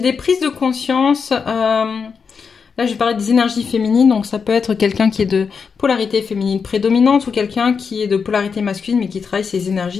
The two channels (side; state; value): right; quieter; 5.8 dB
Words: prises de conscience... Là, je vais parler des énergies féminines, donc ça peut être quelqu'un qui est de polarité féminine prédominante ou quelqu'un qui est de polarité masculine mais qui travaille ses